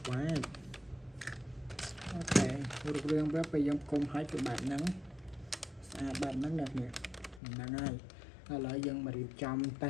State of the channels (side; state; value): right; drops out; at 7.4 s